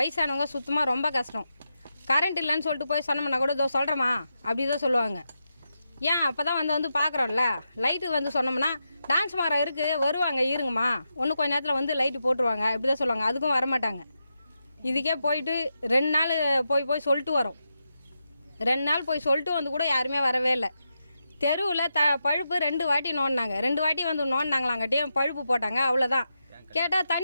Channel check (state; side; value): inverted; both; correlation -0.87